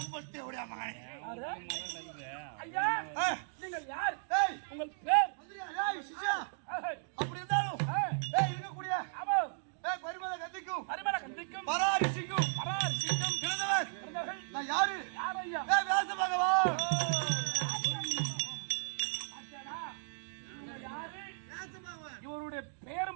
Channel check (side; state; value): left; silent; digital silence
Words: ஓடியா மகனே. ஐயா நீங்கள் யார்? உங்கள் பேர்? ஏய் சிஷ்யா, அப்படி இருந்தாலும் இருக்க கூடிய ஆமா பரிமள கத்திக்கும் பரிமள ராஜாவா இவருடைய